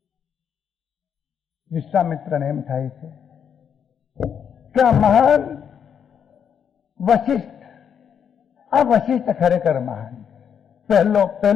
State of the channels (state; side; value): quieter; right; 7.9 dB